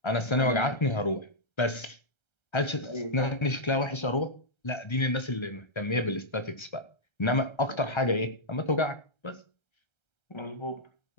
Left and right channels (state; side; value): late; right; 1.3 ms